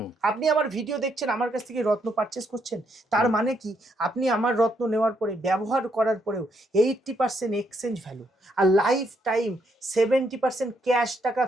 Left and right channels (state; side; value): normal; both; correlation 0.75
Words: আপনি আমার ভিডিও দেখছেন, আমার কাছ থেকে রত্ন পারচেস করছেন, তার মানে কি আপনি আমার রত্ন নেওয়ার পরে ব্যবহার করার পরেও 80% এক্সচেঞ্জ ভ্যালু আর লাইফ টাইম 70% ক্যাশ টাকা